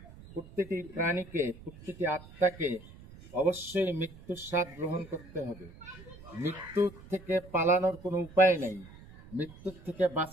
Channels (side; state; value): right; noise; rumble, 19 dB below the sound